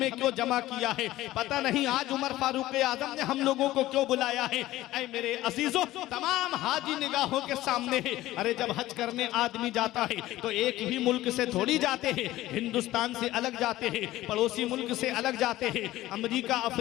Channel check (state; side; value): quieter; right; 16.0 dB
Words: क्यों जमा किया है, पता नहीं आज उमर फारूक आजम ने हम लोगों को क्यों बुलाया है। ऐ मेरे अजीजों, तमाम हाजी निगाहों के सामने है। अरे जब हज करने आदमी जाता है तो एक भी मुल्क से थोड़ी जाते हैं, हिंदुस्तान से अलग जाते हैं, पड़ोसी मुल्क से अलग जाते हैं, अमेरिका